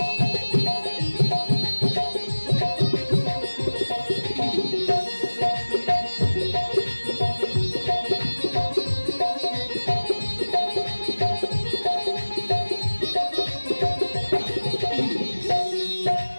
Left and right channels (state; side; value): inverted; both; correlation -1.00